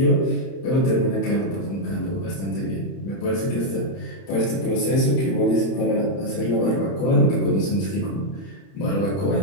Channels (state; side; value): late; right; 31 ms